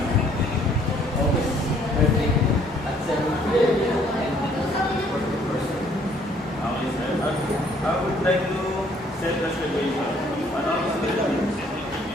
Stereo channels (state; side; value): normal; both; correlation 0.62